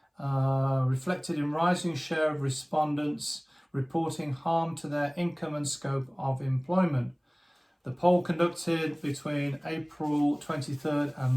reflected in rising share of respondents reporting harm to their income and scope of employment. The poll conducted between April 23rd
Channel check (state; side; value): identical; both; correlation 1.00